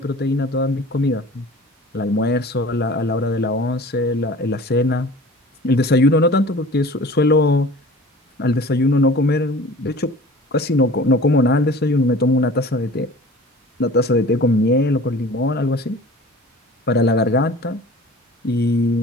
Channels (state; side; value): normal; both; correlation 0.43